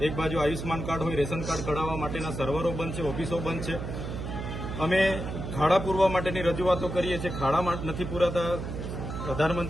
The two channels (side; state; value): right; noise; hum, 6 dB below the sound